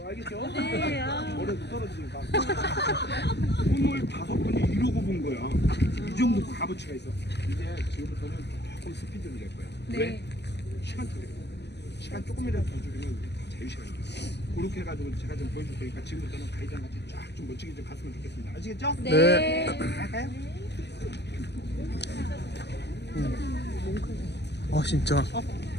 알겠죠? 네. 아. 머리가 떨어지니까. 손을 5번이 이러고 본 거야. 이 정도 값어치가 있어. 이제 지금부터는 조금 스피드를 낼 거야. 네. 왜? 시간 줄여. 시간 조금이라도 더 줄이면 다 자유시간이야. 그렇게 해가지고 제가 좀 보여줄 테니까 지금부터는 가이드랑 같이 쫙 좀 멋지게 좀 갔으면 좋겠습니다. 아시겠죠? 네. 갈까요? 진짜.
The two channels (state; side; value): late; right; 0.50 ms